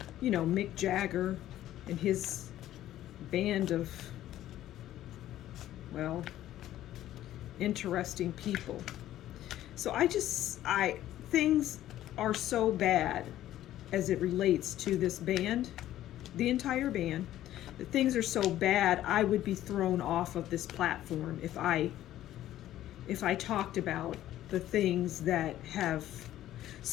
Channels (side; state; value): right; quieter; 13.2 dB